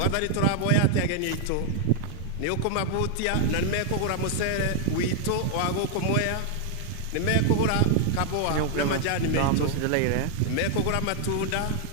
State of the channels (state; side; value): different; both; correlation 0.00